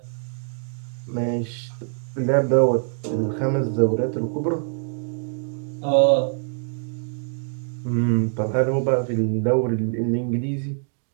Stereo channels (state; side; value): silent; left; digital silence